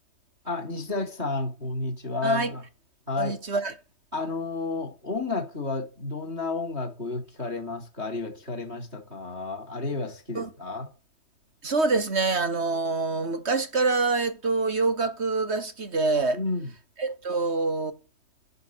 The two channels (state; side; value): late; left; 3.2 ms